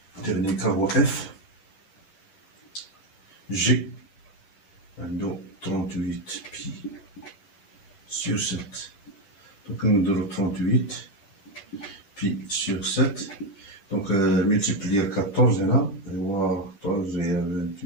cas هو F G 38 pi sur 7. Donc on a 38 pi sur 7. Donc multiplier 14 là, 14 et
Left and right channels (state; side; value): late; right; 10 ms